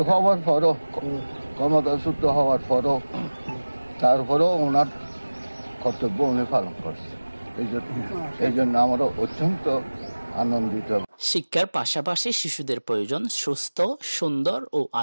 হওয়ার পরও, ক্ষমতাচ্যুত হওয়ার পরও, তারপরেও ওনার কর্তব্য উনি পালন করছে। এই জন্য আমরা অত্যন্ত আনন্দিত। শিক্ষার পাশাপাশি শিশুদের প্রয়োজন সুস্থ, সুন্দর ও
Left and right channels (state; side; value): inverted; both; correlation -1.00